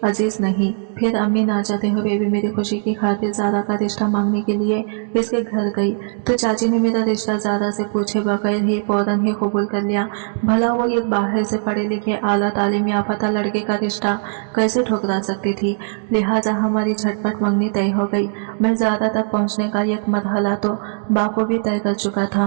अजीज नहीं। फिर अम्मी ना चाहते हुए भी मेरी खुशी की खातिर ज़ारा का रिश्ता मांगने के लिए इसके घर गई। तो चाची ने मेरा रिश्ता ज़ारा से पूछे बगैर ही फौरन ही कबूल कर लिया। भला वो एक बाहर से पढ़े लिखे आला तालीम याफ्ता लड़के का रिश्ता कैसे ठुकरा सकती थी। लिहाजा हमारी झटपट मंगनी तय हो गई। मैं ज़ारा तक पहुँचने का एक मरहला तो बाखूबी तय कर चुका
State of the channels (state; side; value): silent; left; digital silence